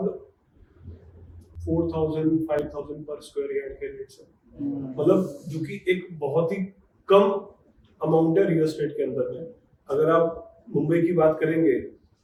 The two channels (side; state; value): both; identical; correlation 1.00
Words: 4,000-5,000 पर स्क्वायर यार्ड के रेट्स है, मतलब जो कि एक बहुत ही कम अमाउंट है रियल एस्टेट के अंदर में। अगर आप मुंबई की बात करेंगे